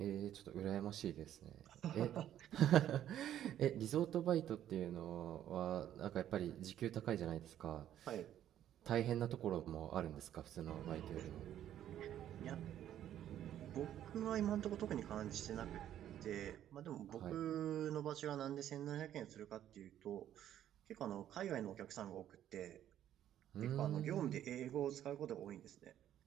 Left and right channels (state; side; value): quieter; left; 11.2 dB